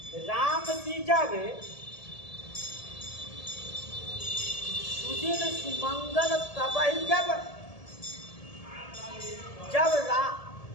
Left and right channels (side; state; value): right; late; 1.7 ms